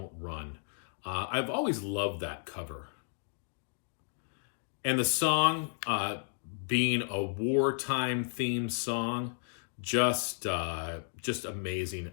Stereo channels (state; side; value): silent; right; digital silence